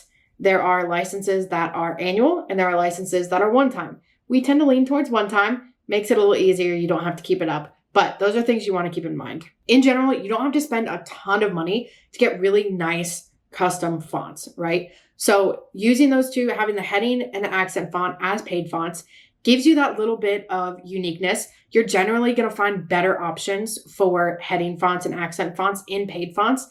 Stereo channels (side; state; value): both; identical; correlation 1.00